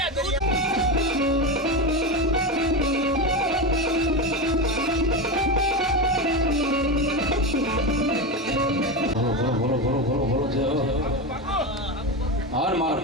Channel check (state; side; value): normal; both; correlation 0.17